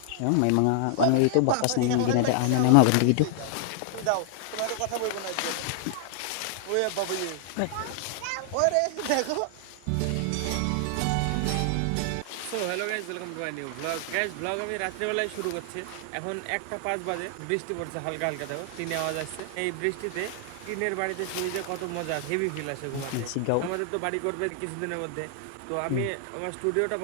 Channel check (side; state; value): both; different; correlation 0.00